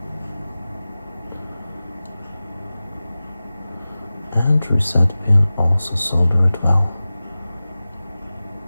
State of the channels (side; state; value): both; inverted; correlation -0.97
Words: And reset pin also soldered well.